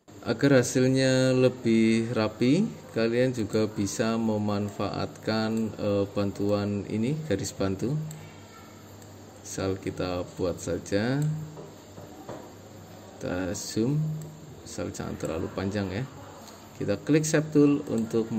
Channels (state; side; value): identical; both; correlation 1.00